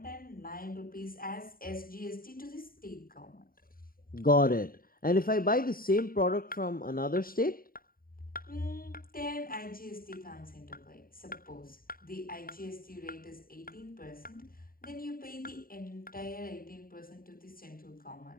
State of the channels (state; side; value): late; right; 0.42 ms